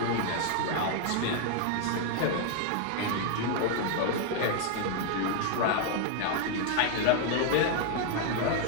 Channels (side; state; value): both; different; correlation 0.00